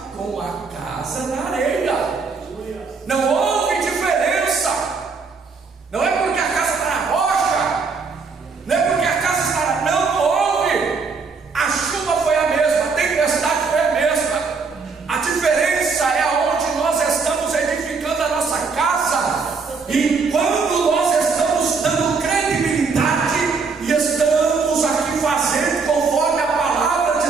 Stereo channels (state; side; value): quieter; left; 4.8 dB